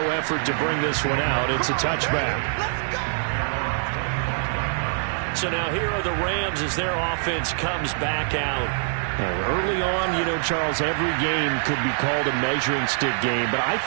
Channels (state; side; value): silent; left; digital silence